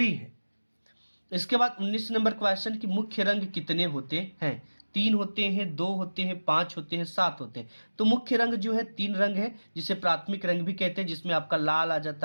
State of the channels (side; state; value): both; inverted; correlation -1.00